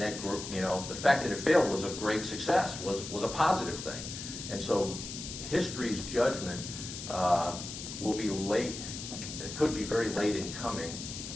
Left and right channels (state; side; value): noise; left; hiss, 8 dB below the sound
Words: that, the fact that it failed was a great success, was a positive thing. And so history's judgment will be late, it could be very late in coming.